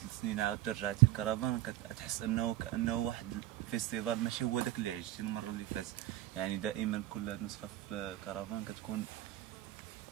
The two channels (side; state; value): left; quieter; 14.4 dB